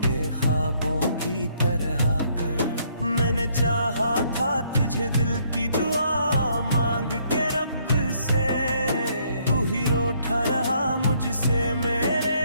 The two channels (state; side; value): inverted; both; correlation -0.68